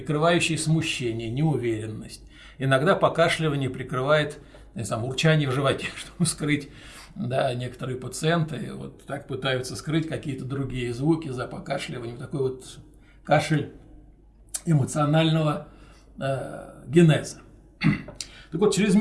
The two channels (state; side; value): identical; both; correlation 1.00